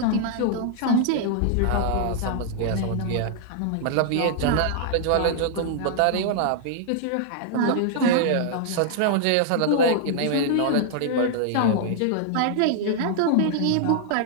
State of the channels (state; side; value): different; both; correlation -0.01